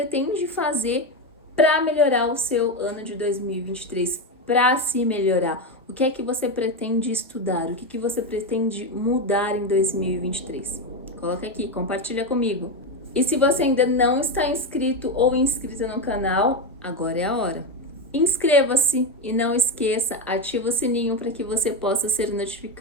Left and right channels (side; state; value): both; normal; correlation 0.13